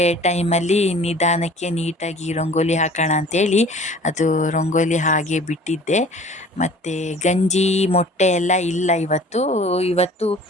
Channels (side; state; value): both; normal; correlation 0.47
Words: ಟೈಮಲ್ಲಿ ನಿಧಾನಕ್ಕೆ ನೀಟಾಗಿ ರಂಗೋಲಿ ಹಾಕೋಣ ಅಂಥೇಳಿ ಅದು ರಂಗೋಲಿ ಹಾಗೆ ಬಿಟ್ಟಿದ್ದೆ. ಮತ್ತು ಗಂಜಿ ಮೊಟ್ಟೆ ಎಲ್ಲ ಇಲ್ಲ ಇವತ್ತು